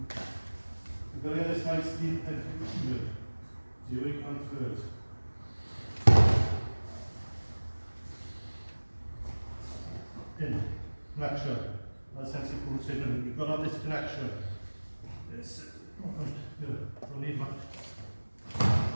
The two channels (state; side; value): inverted; both; correlation -1.00